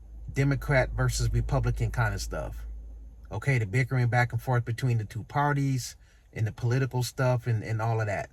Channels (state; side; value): identical; both; correlation 1.00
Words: Democrat versus Republican kind of stuff. Okay, the bickering back and forth between the two parties and the political stuff and all of that.